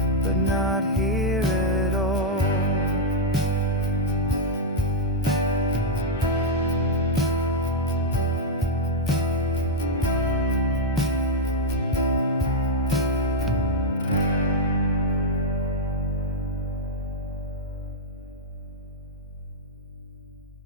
but not here at all.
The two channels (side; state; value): both; normal; correlation -0.02